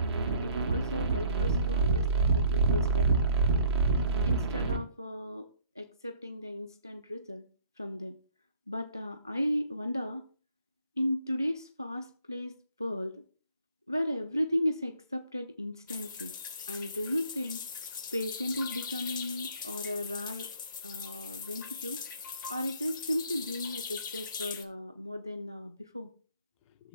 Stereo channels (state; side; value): inverted; both; correlation -0.58